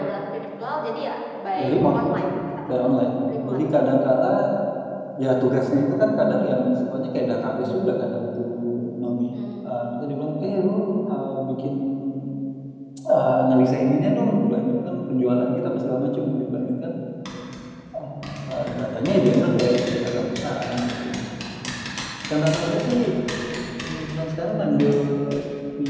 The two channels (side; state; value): both; identical; correlation 1.00